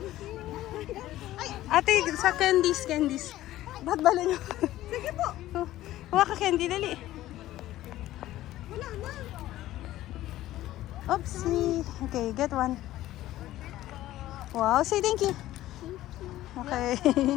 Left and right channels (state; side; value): quieter; right; 14.8 dB